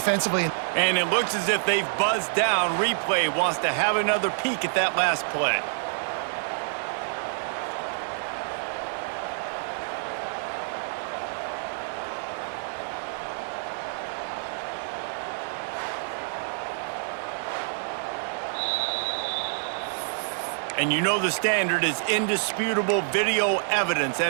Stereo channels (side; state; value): left; silent; digital silence